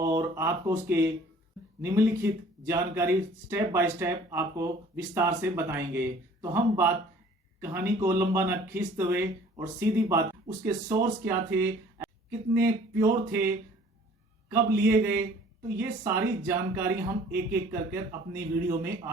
आपको उसके निम्नलिखित जानकारी स्टेप बाय स्टेप आपको विस्तार से बताएंगे। तो हम बात कहानी को लंबा न खींचते हुए और सीधी बात, उसके सोर्स क्या थे, कितने प्योर थे, कब लिए गए, तो ये सारी जानकारी हम एक एक करके अपनी वीडियो में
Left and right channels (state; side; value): normal; both; correlation 0.52